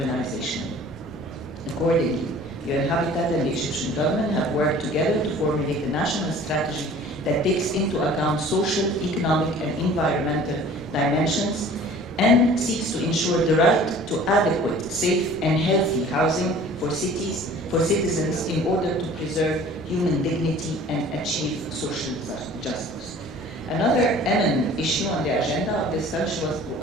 Accordingly, UN Habitat and the Egyptian government have worked together to formulate a national strategy that takes into account social, economic, and environmental dimensions and seeks to ensure the right to adequate, safe, and healthy housing for citizens in order to preserve human dignity and achieve social justice. Another eminent issue on the agenda of discussion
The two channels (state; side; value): normal; both; correlation 0.47